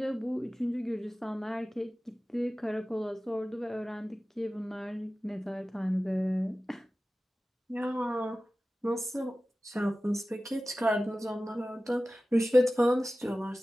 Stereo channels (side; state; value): both; normal; correlation 0.96